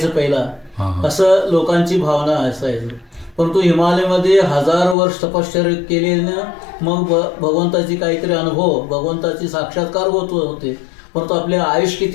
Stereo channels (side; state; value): right; drops out; at 5.0 s